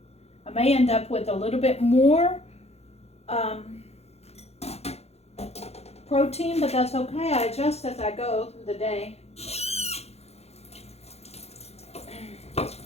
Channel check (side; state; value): right; late; 0.30 ms